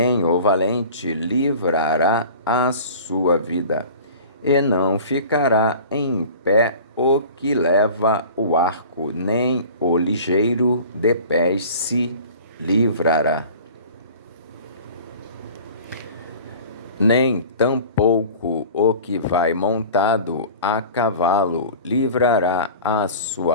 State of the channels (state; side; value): inverted; both; correlation -0.42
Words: o valente livrará a sua vida. E não ficará em pé o que leva o arco, nem o ligeiro de pés se livrará. Nem tampouco o que vai montado a cavalo livrará a